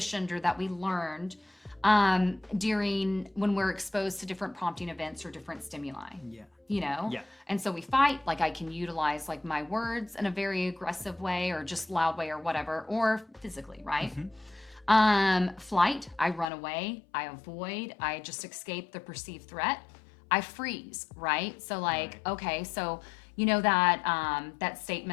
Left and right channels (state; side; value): drops out; right; at 16.5 s